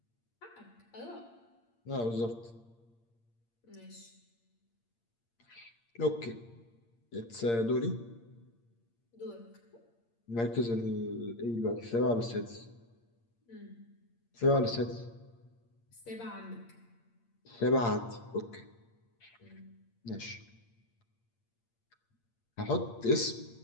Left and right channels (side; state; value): right; late; 8.7 ms